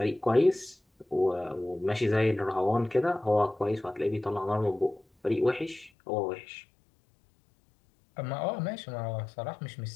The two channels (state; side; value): drops out; right; at 5.9 s